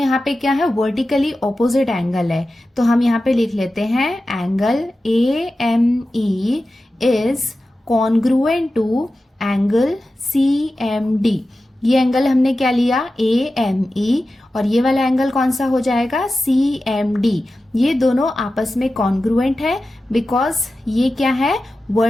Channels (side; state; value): both; normal; correlation 0.94